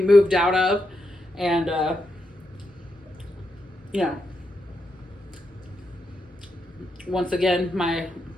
out of. And, once again, my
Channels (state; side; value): normal; both; correlation 0.84